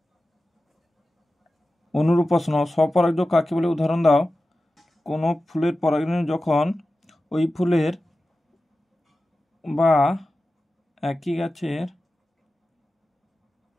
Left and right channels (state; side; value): normal; both; correlation 0.94